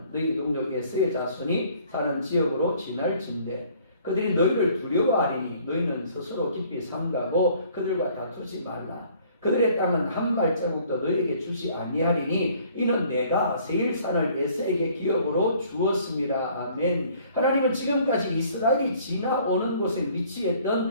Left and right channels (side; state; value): both; inverted; correlation -0.58